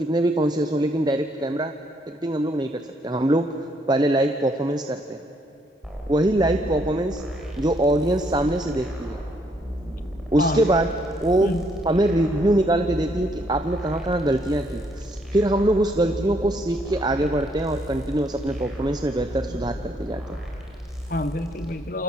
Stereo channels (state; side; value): normal; both; correlation 0.70